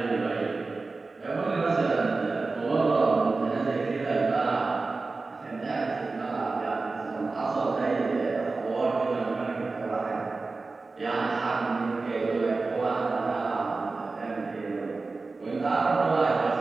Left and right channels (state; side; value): quieter; left; 3.8 dB